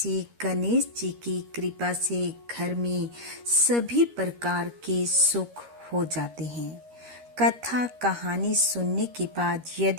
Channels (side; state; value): left; late; 13 ms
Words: गणेश जी की कृपा से घर में सभी प्रकार के सुख हो जाते हैं। कथा कहानी सुनने के बाद